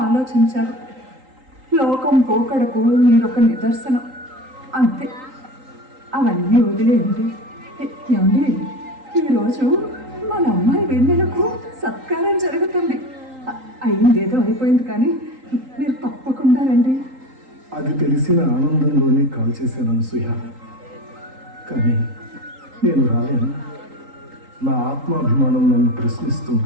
ఆలోచించారు. లోకం పోకడకు మీరొక నిదర్శనం, అంతే. అవన్నీ వదిలేయండి. ఏమండి, ఈరోజు మన అమ్మాయి వెన్నెలకు సత్కారం జరుగుతుంది. అయిందేదో అయిపోయింది, కానీ మీరు తప్పకుండా రండి. అది తెలిసిన ఆనందంలోనే కాల్ చేశాను అనసూయ, కానీ నేను రాలేను. నా ఆత్మాభిమానం నన్ను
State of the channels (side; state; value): left; late; 3.8 ms